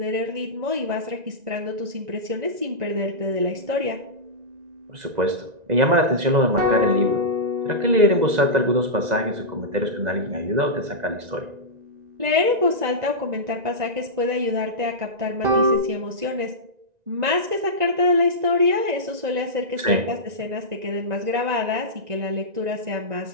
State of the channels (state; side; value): late; left; 1.9 ms